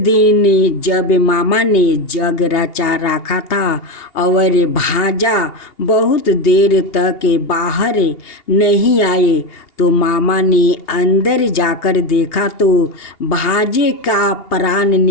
जब मामा ने जग रचा रखा था और भांजा बहुत देर तक बाहर नहीं आए तो मामा ने अंदर जाकर देखा तो भांजे का प्राण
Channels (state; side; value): late; right; 2.8 ms